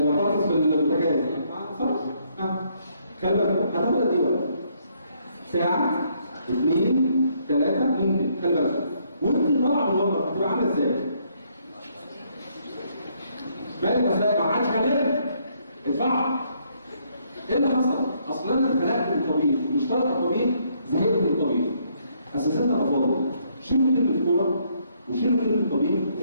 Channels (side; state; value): both; inverted; correlation -0.70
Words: في البوتاجاز صح؟ خلي بالك هتاخد قد ايه؟ ساعه 2 3 ممكن خلي بالك وانت طالعه من المطبخ هتبقى عامله ازاي؟ مالك ازاي؟ ما عادش حلال ادفع. ايه اللي حصل؟ اصل انا اتخلقت من الطبيخ مش طالع الطبيخ زهقت من الطبيخ. اساساتنا افاضل شيلوا كلمه الكوره وشيلوا كلمه الطبيخ